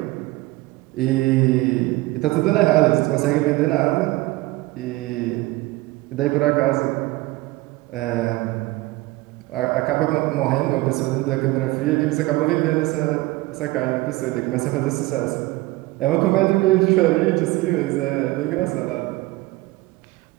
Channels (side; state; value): left; quieter; 20.1 dB